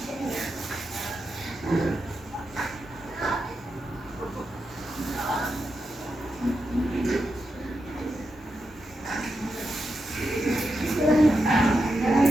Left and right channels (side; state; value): both; normal; correlation 0.87